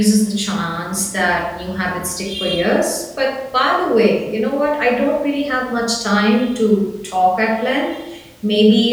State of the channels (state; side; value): identical; both; correlation 1.00